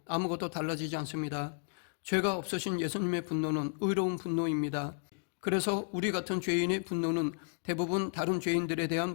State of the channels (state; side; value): silent; right; 56 dB below the other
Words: 아무것도 달라지지 않습니다. 죄가 없으신 예수님의 분노는 의로운 분노입니다. 그래서 우리 같은 죄인의 분노는 대부분 다른 죄인들에